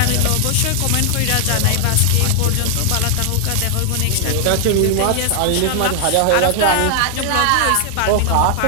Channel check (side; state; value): both; different; correlation 0.00